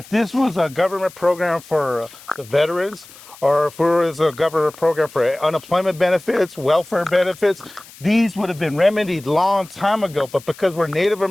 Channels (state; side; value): noise; left; hiss, 21 dB below the sound